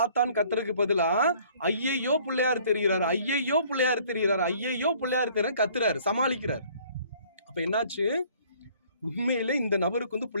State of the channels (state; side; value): inverted; both; correlation -0.57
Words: ஆத்தான் கத்துறதுக்கு பதிலா ஐயையோ பிள்ளையார் தெரிகிறாரு, ஐயையோ பிள்ளையார் தெரிகிறாரு, ஐயையோ பிள்ளையார் தெரியாரு கத்துறாரு, சமாளிக்கிறார். அப்ப என்னாச்சு, உண்மையில இந்த நபருக்கு வந்து